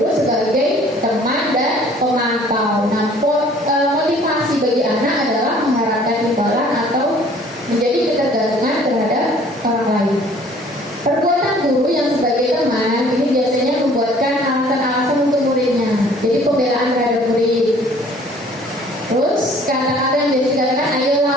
sebagai teman dan pemantau. Nah, motivasi bagi anak adalah mengharapkan imbalan atau menjadi ketergantungan terhadap orang lain. Perbuatan guru yang sebagai teman ini biasanya membuatkan alasan-alasan untuk muridnya. Jadi pembelaan terhadap murid. Terus kadang-kadang dia dikatakan, ayolah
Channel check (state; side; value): normal; both; correlation 0.54